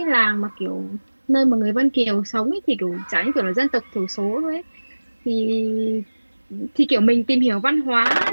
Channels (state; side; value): inverted; both; correlation -1.00